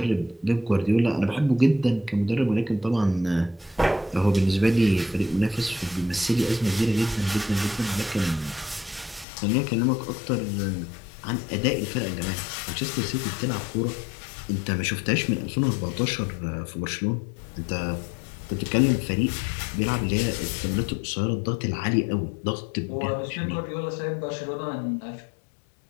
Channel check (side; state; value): right; drops out; at 9.2 s